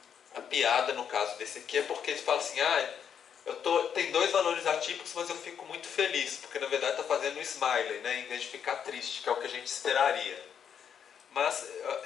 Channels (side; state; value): right; quieter; 8.0 dB